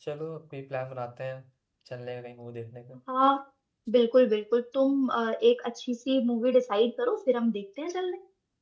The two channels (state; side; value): identical; both; correlation 1.00